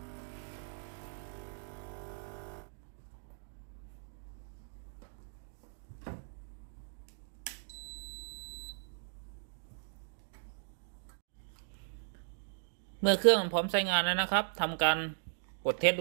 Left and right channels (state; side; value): silent; left; digital silence